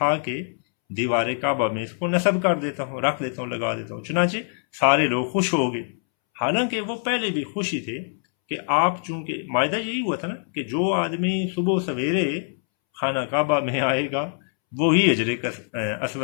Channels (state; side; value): silent; right; 63 dB below the other